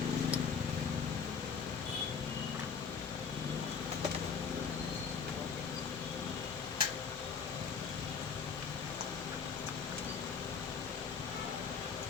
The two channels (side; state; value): right; quieter; 6.0 dB